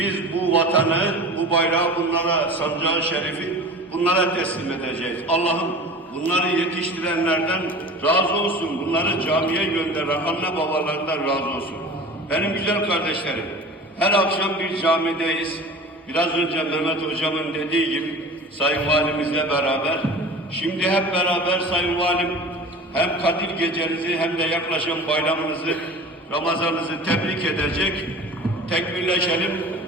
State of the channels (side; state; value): both; normal; correlation 0.38